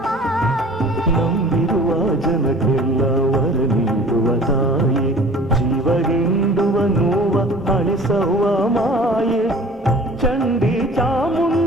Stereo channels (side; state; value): both; normal; correlation 0.46